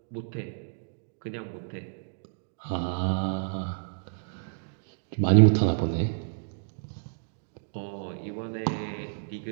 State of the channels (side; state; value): left; silent; digital silence